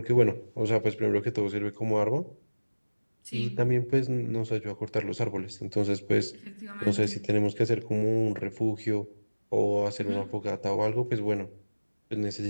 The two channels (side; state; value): both; inverted; correlation -1.00